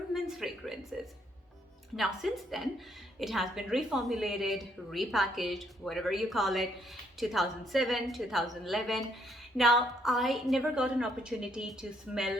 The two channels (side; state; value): both; normal; correlation 0.70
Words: men's fragrances. Now since then it has been reformulated, repackaged, whatever you call it, 2007, 2011. Now I never got an opportunity to